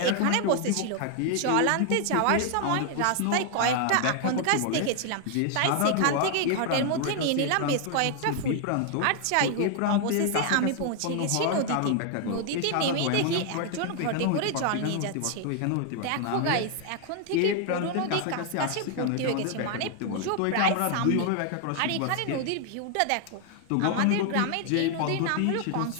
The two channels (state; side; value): different; both; correlation 0.00